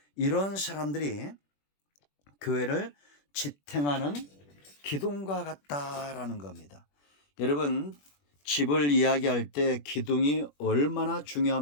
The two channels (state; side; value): late; right; 21 ms